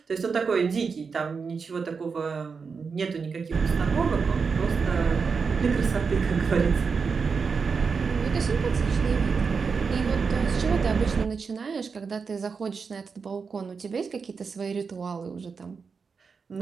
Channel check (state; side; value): quieter; left; 5.3 dB